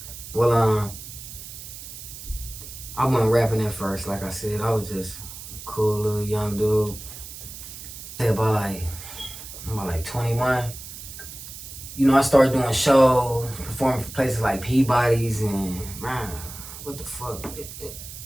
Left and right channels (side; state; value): right; noise; hiss, 12 dB below the sound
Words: Well, I wasn't rapping at first. Like I said, I was just a cool little young dude. Say about like 21. You know, I started doing shows, performing for places like Peabody's, and man, what the fuck?